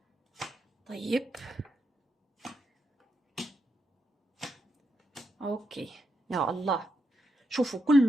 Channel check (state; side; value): normal; both; correlation 0.83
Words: طيب أوكي يا الله، شوفوا